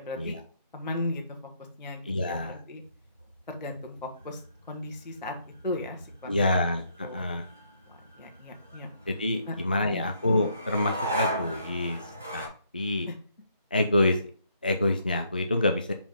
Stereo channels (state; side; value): inverted; both; correlation -0.71